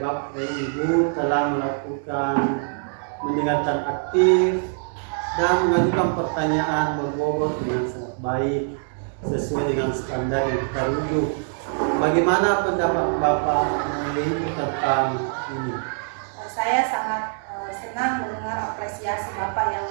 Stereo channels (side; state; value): left; silent; 63 dB below the other